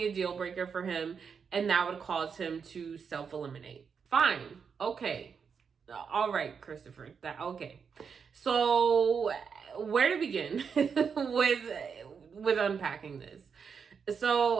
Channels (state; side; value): quieter; left; 6.3 dB